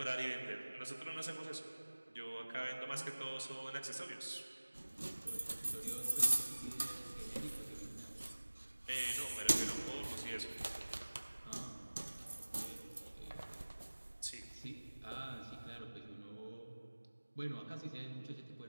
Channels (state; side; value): inverted; both; correlation -1.00